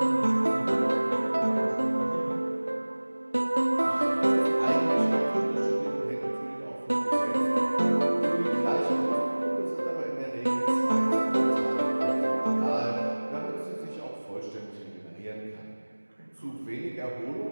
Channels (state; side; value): inverted; both; correlation -1.00